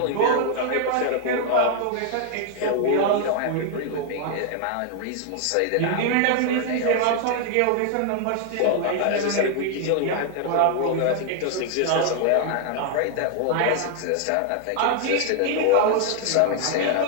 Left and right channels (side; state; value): both; different; correlation 0.00